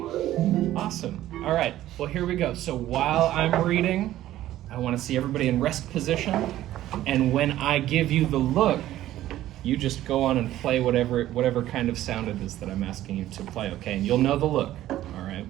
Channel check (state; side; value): quieter; left; 13.9 dB